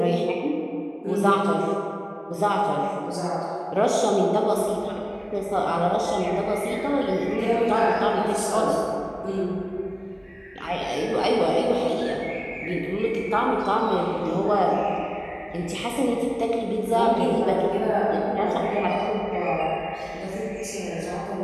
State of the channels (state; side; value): identical; both; correlation 1.00